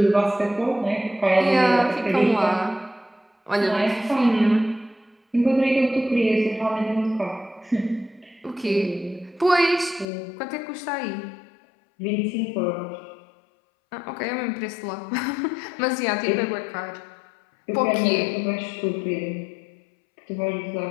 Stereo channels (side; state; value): right; drops out; at 10.1 s